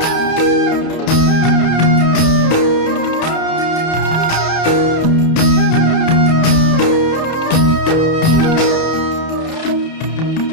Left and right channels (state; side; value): late; right; 31 ms